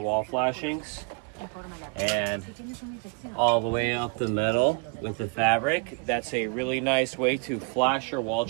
flashings, and all the way up the metal with the fabric. That's a really nice way to flash your wall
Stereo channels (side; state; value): left; quieter; 33.5 dB